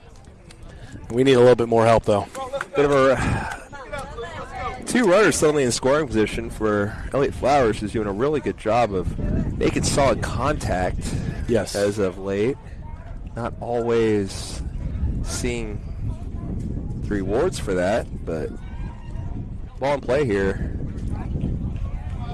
We need a little bit more help, though. Bit of a 2 runners suddenly in scoring position for Elliott Flowers, who's doing a really good job of making solid contact. Yes. As of late, not always seeing the rewards for that, but ball in play here.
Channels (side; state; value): both; identical; correlation 1.00